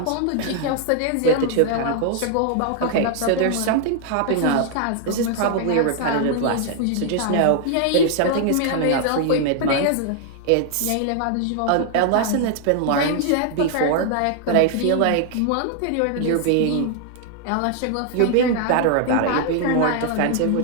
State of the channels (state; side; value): different; both; correlation 0.00